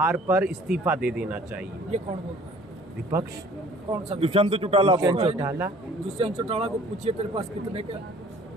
पर इस्तीफा दे देना चाहिए। ये कौन बोलता है? विपक्ष। कौन सा? दुष्यंत चौटाला। दुष्यंत चौटाला को पूछिए तेरे पास कितने का,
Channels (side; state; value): both; normal; correlation 0.53